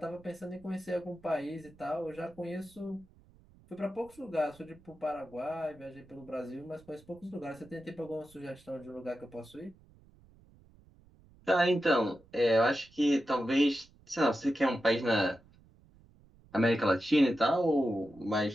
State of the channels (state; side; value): noise; right; rumble, 27 dB below the sound